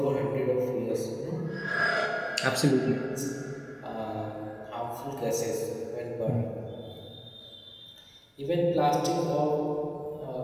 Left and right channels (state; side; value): identical; both; correlation 1.00